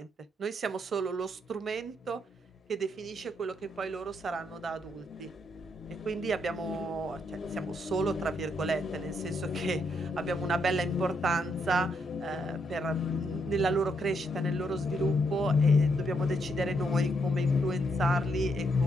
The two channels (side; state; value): both; normal; correlation 0.76